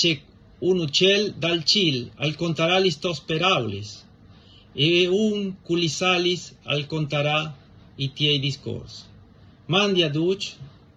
un uccel dal cil al contarà li sto speraulis, e un culisalis al contarà i tiei discorsi. Mandi a duc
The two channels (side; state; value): both; identical; correlation 1.00